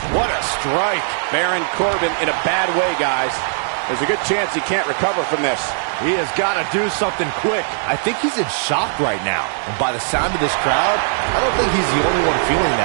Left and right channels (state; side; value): silent; left; digital silence